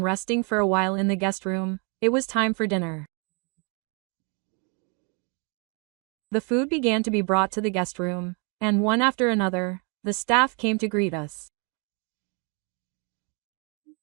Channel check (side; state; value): left; quieter; 35.5 dB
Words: resting for a while in the guest room, it was time for dinner. The food began to be brought to the guest room, and one after another, the staff came to greet us.